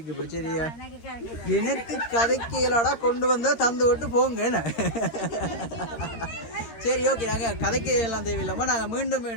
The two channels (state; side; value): late; right; 13 ms